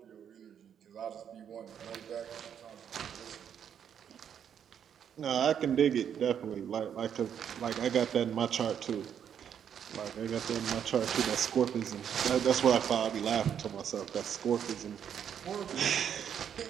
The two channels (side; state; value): left; quieter; 8.6 dB